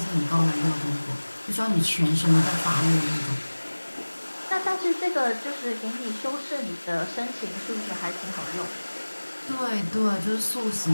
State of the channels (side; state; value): both; inverted; correlation -1.00